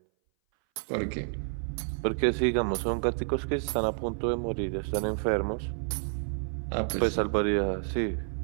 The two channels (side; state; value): left; silent; 58 dB below the other